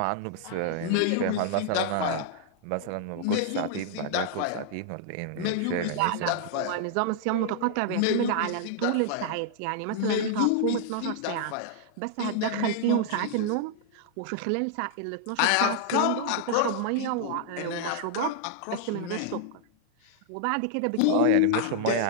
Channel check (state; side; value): different; both; correlation -0.01